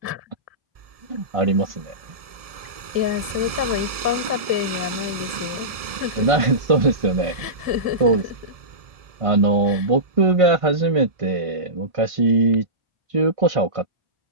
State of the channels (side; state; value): left; late; 1.7 ms